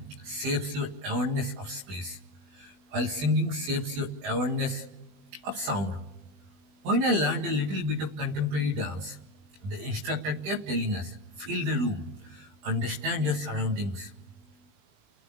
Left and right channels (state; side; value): late; left; 20 ms